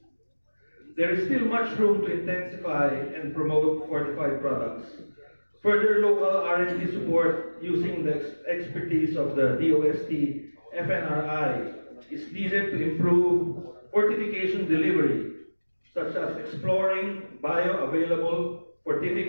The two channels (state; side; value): inverted; both; correlation -1.00